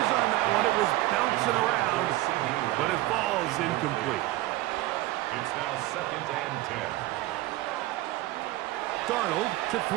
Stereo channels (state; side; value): quieter; left; 17.1 dB